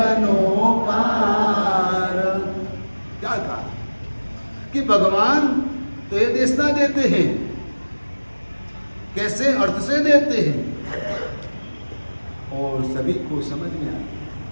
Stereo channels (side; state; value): both; inverted; correlation -1.00